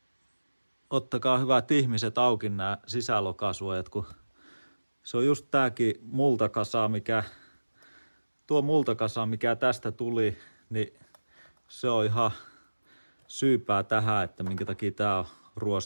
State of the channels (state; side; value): inverted; both; correlation -1.00